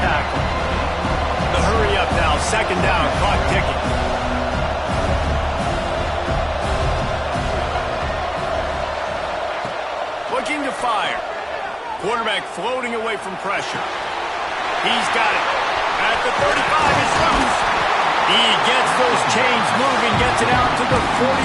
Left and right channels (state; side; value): identical; both; correlation 1.00